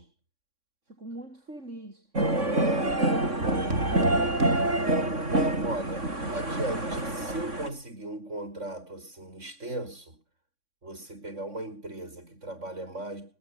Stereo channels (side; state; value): left; late; 3.6 ms